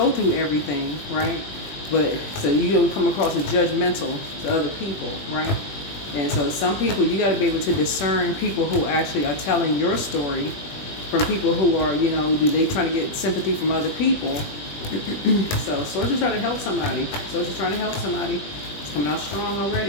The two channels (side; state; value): right; late; 20 ms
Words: through everything, right? But so you don't come across as judgmental to other people, right? And so some people, you got to be able to discern people who actually are telling your story from people who are, they trying to get sympathy from other people. So Source is trying to help somebody. Source is trying to help somebody. It's coming out strong